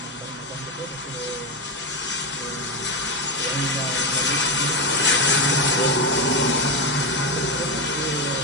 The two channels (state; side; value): normal; both; correlation 0.11